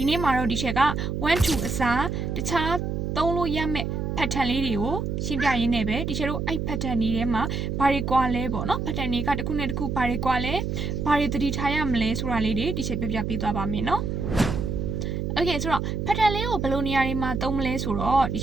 ီနေ့မှာတော့ဒီချက်က1 2အစားတခြားသုံးလို့ရမယ့် pattern လေးတွေကိုရှင်းပြရင်းနဲ့ပဲဒီချက်တို့အဲ့ pattern တွေထဲမှာဘာတွေကွာလဲပေါ့နော် pattern တွေကတစ်ခုနဲ့တစ်ခုဘာတွေကွာလဲဘာတွေသတိထားရမလဲဆိုတာလေးတွေဒီချက်ပြပြပေးသွားပါမယ်နော် Okay ဆိုတော့ pattern လေးကိုဘယ်လိုနေရာတွေမှာသုံးမလဲဆိုတော့ဒီ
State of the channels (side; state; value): right; noise; hum, 2 dB below the sound